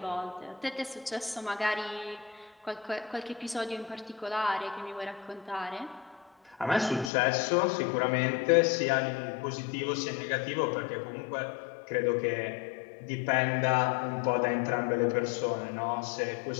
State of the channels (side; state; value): right; drops out; at 7.1 s